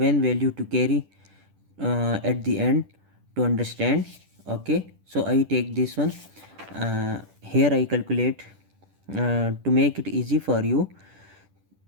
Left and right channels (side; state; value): left; late; 10 ms